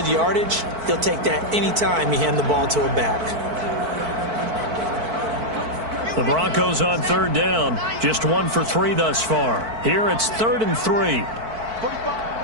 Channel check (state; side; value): late; left; 4.5 ms